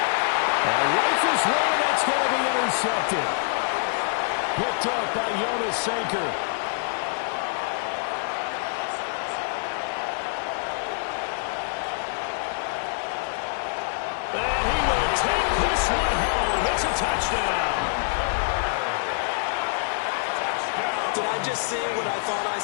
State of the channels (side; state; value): right; silent; digital silence